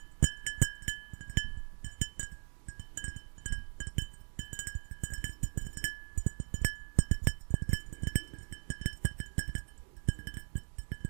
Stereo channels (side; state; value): left; silent; digital silence